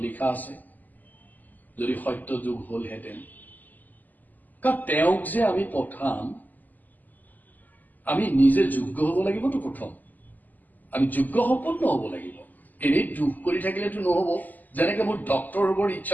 লিখা আছে, যদি সত্য যুগ হলহেঁতেন, কাৰণ তেওঁক যে আমি পঠাম আমি নিজে যোগ্য হব লাগিবতো। প্ৰথম আমি যোগ্য সম্পন্ন হব লাগিব। এনেই দুখ কৰি থাকিলেতো নহব। যেনেকে মোৰ ডক্টৰ হবৰ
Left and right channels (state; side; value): late; right; 0.083 ms